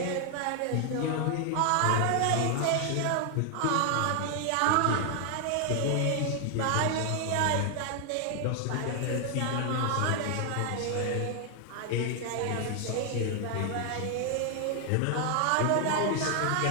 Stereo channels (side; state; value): both; different; correlation 0.00